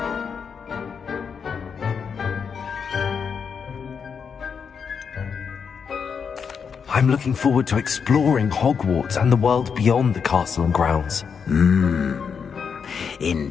I'm looking forward to exploring Hogwarts and the world beyond the castle and grounds.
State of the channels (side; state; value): right; quieter; 6.4 dB